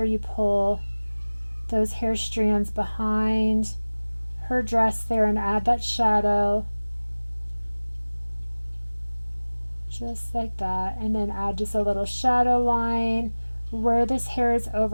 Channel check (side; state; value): both; inverted; correlation -1.00